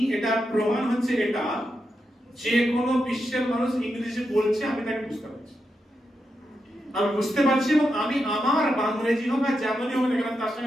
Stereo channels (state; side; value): normal; both; correlation 0.86